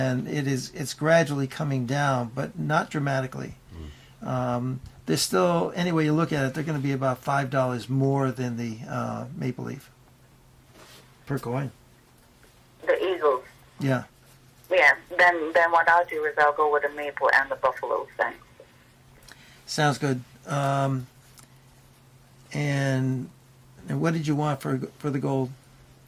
it's gradually coming down, but not dramatically. They're still, any way you look at it, they're going to be about $5 more than the Maple Leaf per coin. The Eagles. Yeah. Yeah, then what I'll do is I'll go with the maple and the buffaloes then. Sounds good. And what did you want for the gold?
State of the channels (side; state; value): both; identical; correlation 1.00